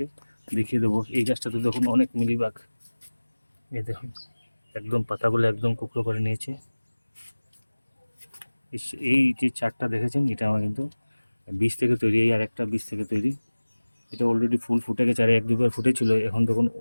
দেখিয়ে দেবো। এই গাছটাতে দেখুন অনেক মিলিবাগ, এই দেখুন একদম পাতাগুলো একদম কুকড়ো করে নিয়েছে। এই যে চারটা দেখেছেন, এটা আমার কিন্তু বীজ থেকে তৈরি। এই আর একটা বীজ থেকে তৈরি। এটা অলরেডি ফুল ফুটে গেছে, আর 1-2 বার ফুটেছিল। এখন দেখুন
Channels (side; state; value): both; inverted; correlation -1.00